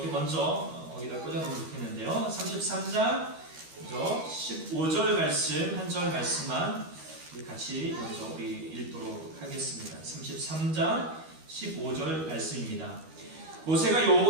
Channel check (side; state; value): left; late; 13 ms